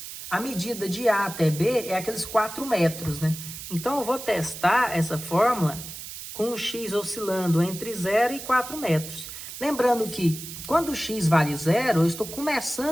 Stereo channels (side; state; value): right; noise; hiss, 11 dB below the sound